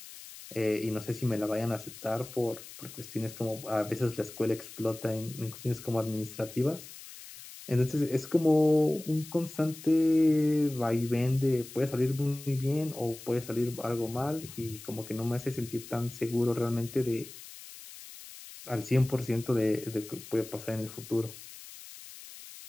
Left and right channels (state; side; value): noise; left; hiss, 15 dB below the sound